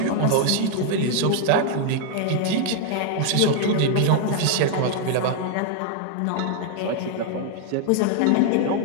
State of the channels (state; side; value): different; both; correlation 0.00